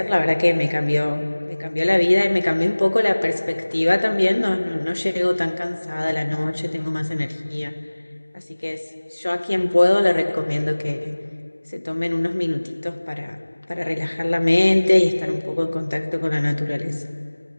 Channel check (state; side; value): inverted; both; correlation -1.00